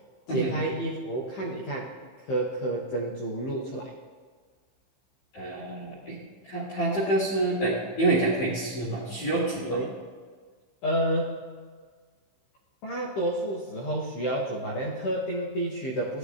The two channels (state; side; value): late; right; 15 ms